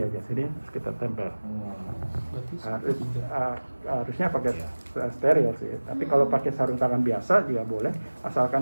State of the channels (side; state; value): both; inverted; correlation -1.00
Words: sini, terus kita tempel. Harusnya pakai steril sih. Tapi kalau pakai sarung tangan biasa juga boleh, asalkan